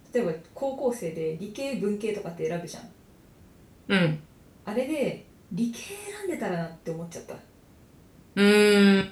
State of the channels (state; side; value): identical; both; correlation 1.00